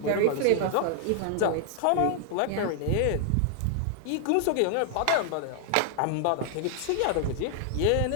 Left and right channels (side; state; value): both; different; correlation 0.00